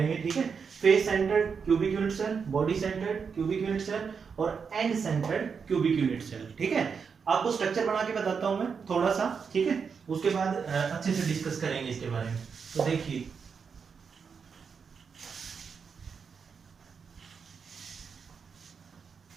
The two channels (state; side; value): quieter; left; 6.0 dB